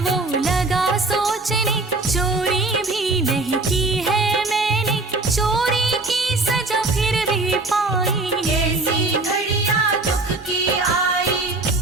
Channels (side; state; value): left; quieter; 3.2 dB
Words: वो लगा सोचने, चोरी भी नहीं की है मैंने, चोरी की सजा फिर भी पाई। ऐसी घड़ियां दुख की आई।